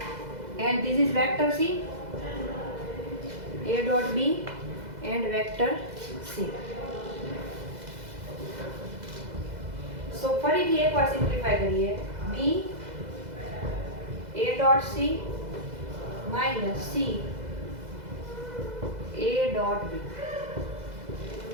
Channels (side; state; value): left; late; 2.0 ms